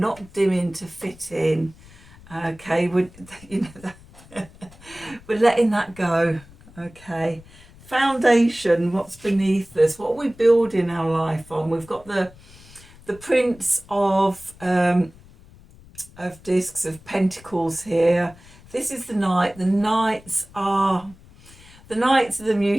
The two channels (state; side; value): noise; left; rumble, 23 dB below the sound